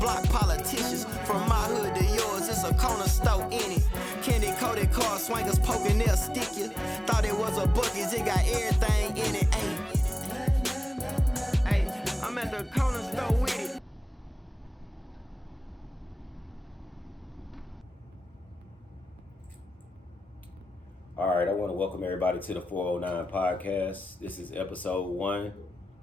politicians. From my hood to yours, it's a corner store in it. Candy coated car swingers poking, they'll stick you. Thought it was a Buc-ee's, it got everything in it. Ayy, I'm at the corner store with it. All right, I want to welcome everybody to the 409 podcast. This is episode 1,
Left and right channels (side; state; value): both; normal; correlation 0.96